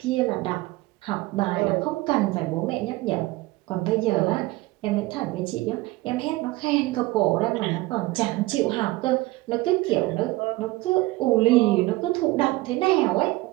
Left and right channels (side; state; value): left; quieter; 19.8 dB